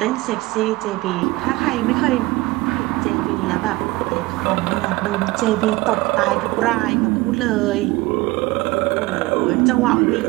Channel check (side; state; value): left; quieter; 20.6 dB